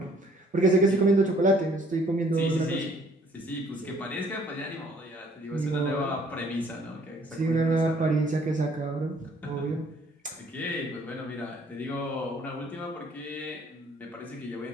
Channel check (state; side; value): normal; both; correlation 0.60